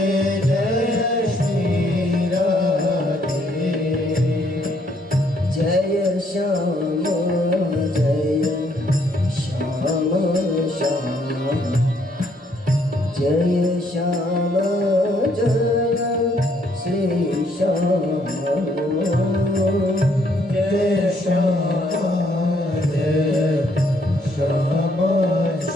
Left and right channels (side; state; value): both; normal; correlation 0.69